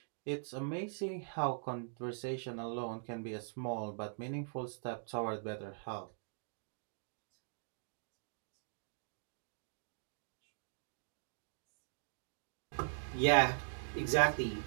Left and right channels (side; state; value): left; silent; digital silence